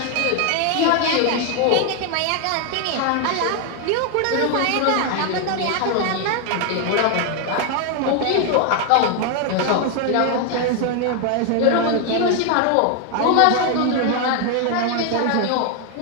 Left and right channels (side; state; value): both; different; correlation 0.01